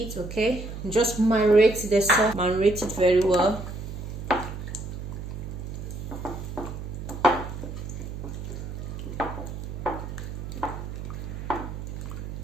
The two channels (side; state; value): right; noise; hum, 8 dB below the sound